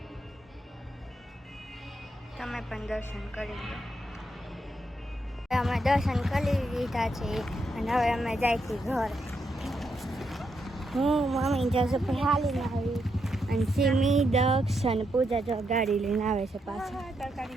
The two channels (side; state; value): both; normal; correlation 0.81